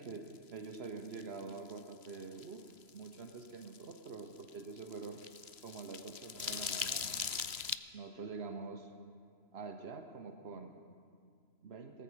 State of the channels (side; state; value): left; late; 3.0 ms